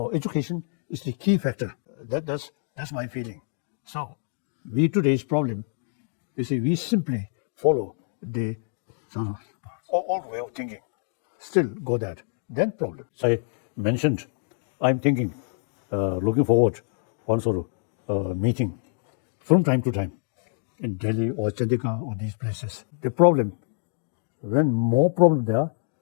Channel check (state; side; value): silent; right; digital silence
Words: education is the key factor. That's my feeling. So today's problem, you see, we simply follow the sort of old way of thinking. Still go that. Then problem. I mentioned, I'm thinking, looking forward one sort of meeting from time to time in Delhi or Chandigarh or these places. The problem, when more problem there,